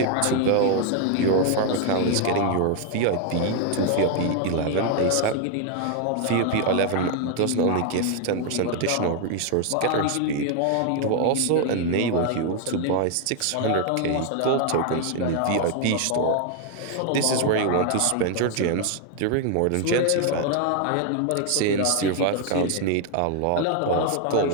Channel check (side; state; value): both; different; correlation 0.00